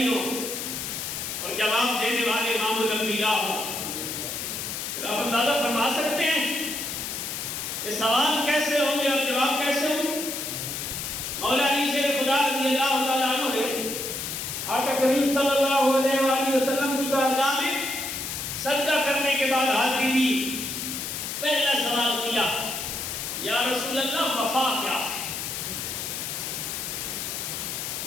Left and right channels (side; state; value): left; noise; hiss, 4 dB below the sound